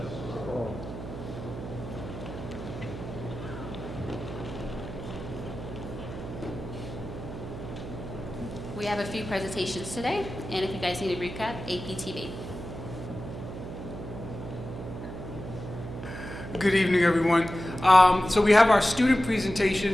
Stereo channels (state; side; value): noise; right; hum, 9 dB below the sound